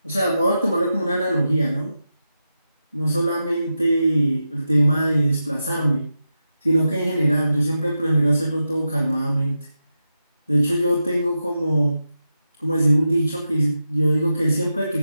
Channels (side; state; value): both; inverted; correlation -0.90